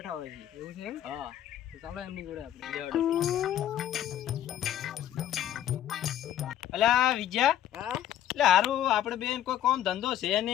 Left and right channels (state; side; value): quieter; right; 11.5 dB